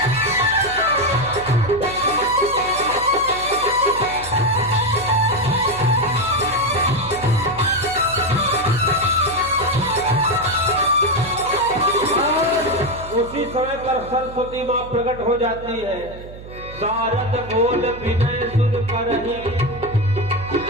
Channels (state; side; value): noise; right; hum, 15 dB below the sound